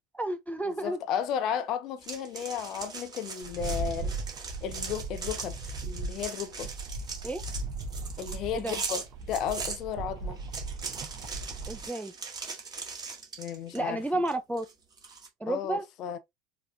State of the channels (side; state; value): both; normal; correlation 0.46